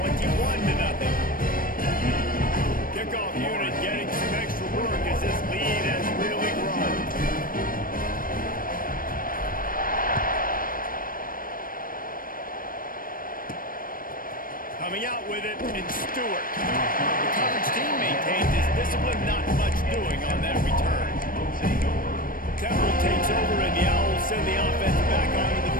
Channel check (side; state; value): right; late; 0.41 ms